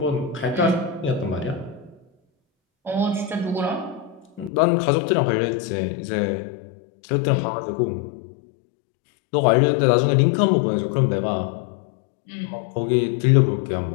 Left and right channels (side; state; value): right; drops out; at 4.5 s